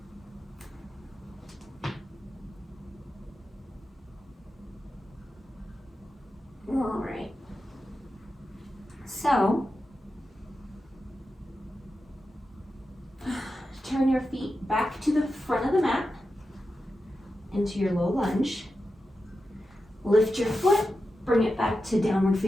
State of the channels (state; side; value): normal; both; correlation 0.90